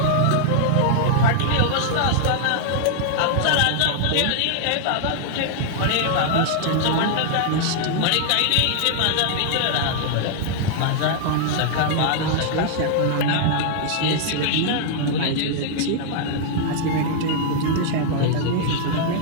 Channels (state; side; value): different; both; correlation -0.01